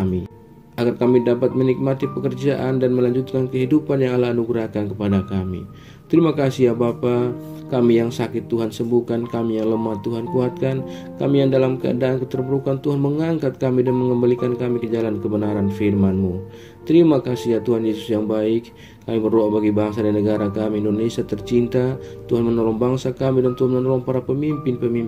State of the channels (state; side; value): identical; both; correlation 1.00